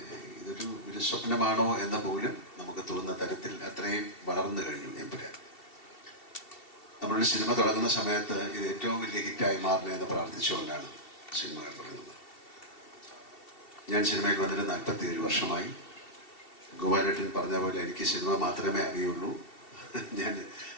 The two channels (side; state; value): right; late; 2.7 ms